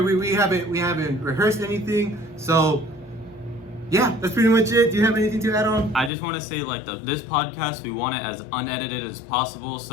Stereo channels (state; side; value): drops out; right; at 6.1 s